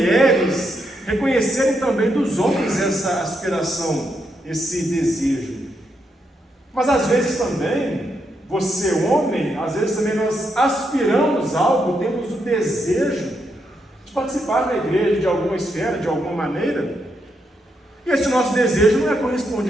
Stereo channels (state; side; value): normal; both; correlation 0.80